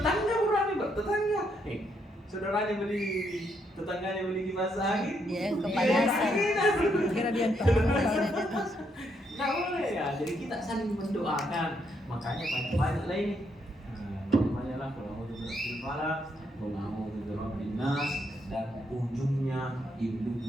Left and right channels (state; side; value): normal; both; correlation 0.76